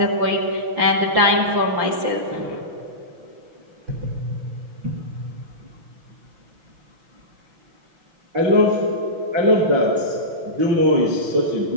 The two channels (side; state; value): left; late; 6.1 ms